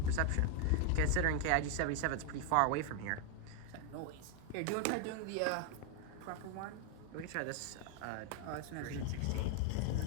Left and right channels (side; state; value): both; different; correlation 0.01